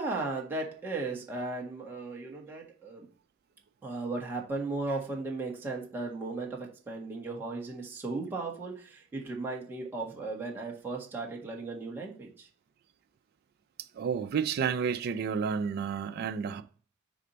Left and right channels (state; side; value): quieter; left; 4.1 dB